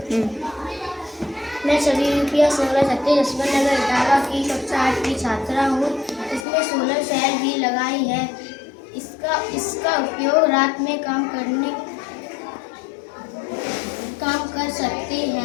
मैं सभी PS नोला छत्ते जसवंत नगर इटावा की कक्षा 8 की छात्रा हूँ। इसमें सोलर सेल भी लगाई है। इसका उपयोग रात में काम कर सकते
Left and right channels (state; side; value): drops out; right; at 6.5 s